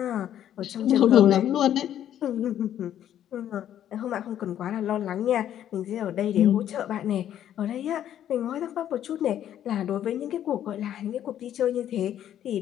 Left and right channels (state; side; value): quieter; right; 10.8 dB